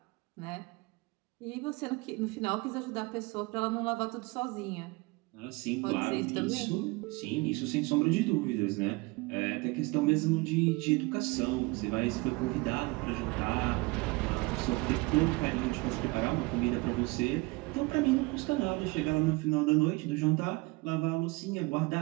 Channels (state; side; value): quieter; left; 24.7 dB